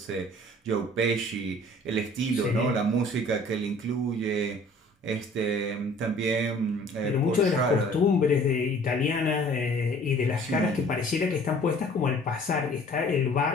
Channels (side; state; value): both; normal; correlation 0.52